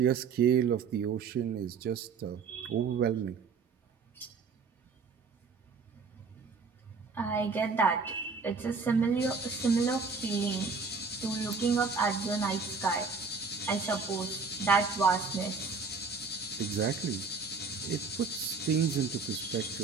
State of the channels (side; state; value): left; quieter; 4.9 dB